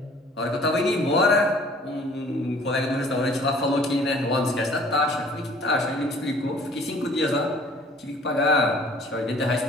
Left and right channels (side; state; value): both; normal; correlation 0.53